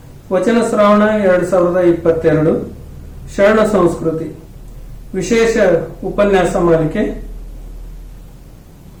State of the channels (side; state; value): both; identical; correlation 1.00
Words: ವಚನ ಶ್ರಾವಣ 2022 ಶರಣ ಸಂಸ್ಕೃತಿ ವಿಶೇಷ ಉಪನ್ಯಾಸ ಮಾಲಿಕೆ.